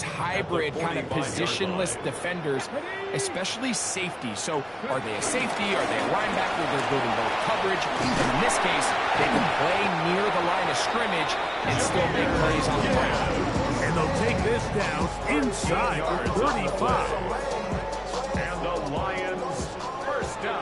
hybrid kind of positionless defenders, especially safety. So are they a safety? Are they a linebacker? They're building both coverage. And in this case, they can play near the line of scrimmage and still make plays on the ground. And they'll take this down inside the 35. And the Lions first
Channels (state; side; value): identical; both; correlation 1.00